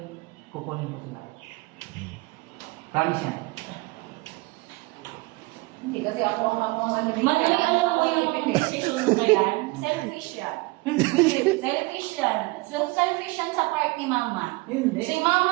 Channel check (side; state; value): left; quieter; 23.5 dB